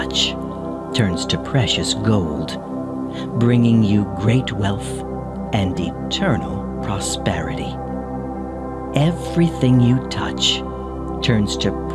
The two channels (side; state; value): both; identical; correlation 1.00